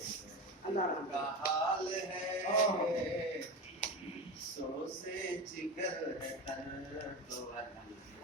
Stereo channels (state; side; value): normal; both; correlation 0.23